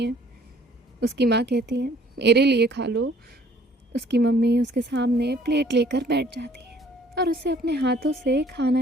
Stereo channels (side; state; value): both; normal; correlation 0.58